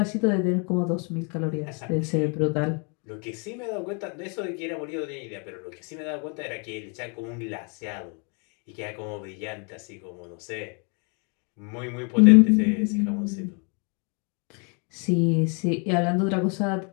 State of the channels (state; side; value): quieter; right; 36.4 dB